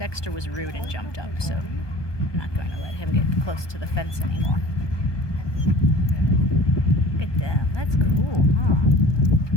was rude and jumped up, so I'm not going to let him get close to the fence anymore. Look at them. That's cool, huh?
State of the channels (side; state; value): right; late; 1.2 ms